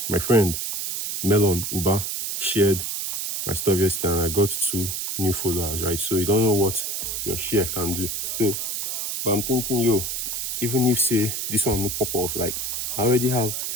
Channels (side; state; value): right; noise; hiss, 3 dB below the sound